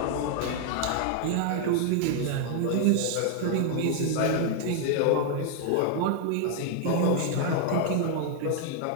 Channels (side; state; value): both; different; correlation 0.00